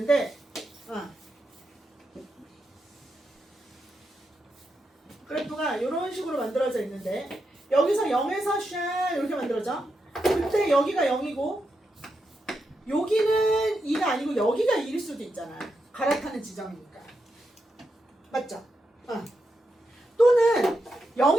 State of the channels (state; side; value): normal; both; correlation 0.85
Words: 그래프가 이런 식으로 만들어져 있는데 여기서 0에서 샤 이렇게 만들어져. 그때 여기가 0이고 여기는 2가 아니고 여기가 2일 수도 있잖아. 갈아타는 지점이니까. 맞죠? 또는